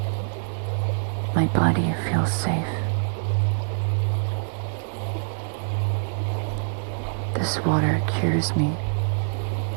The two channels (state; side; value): silent; left; digital silence